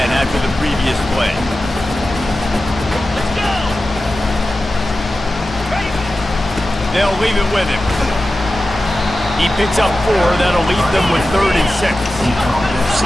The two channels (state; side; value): normal; both; correlation 0.94